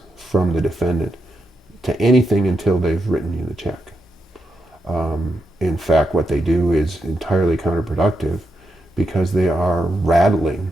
from the defendant to anything until they've written you the check. In fact, what they do is entirely counterproductive because they are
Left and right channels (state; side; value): normal; both; correlation 0.84